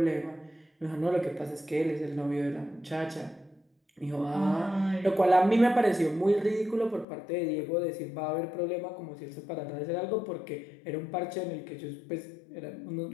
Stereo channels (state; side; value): drops out; right; at 7.1 s